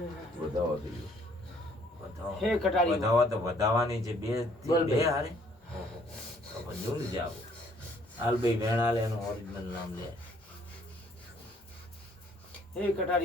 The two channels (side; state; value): both; normal; correlation 0.63